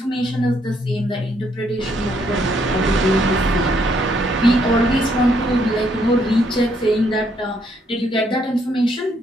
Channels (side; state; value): both; normal; correlation 0.71